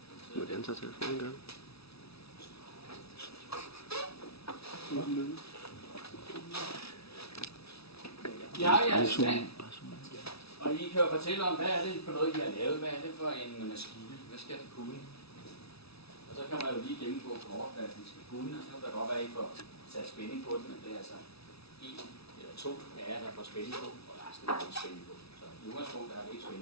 Hvordan tager telefonen gang? Ja, jeg er stand. Og I kan jo fortælle om, hvad er det for noget, I har lavet? Hvad er det for en maskine? Hvad skal det kunne? Og så kan man jo lige gennemgå kort, hvad det skal kunne. Og så kan der godt være, at I får sat spænding på det, men det er altså 1 eller 2 af jer, der får spænding på, og resten er ikke spænding på. Så i udgangspunkt er der ikke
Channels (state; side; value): late; right; 0.77 ms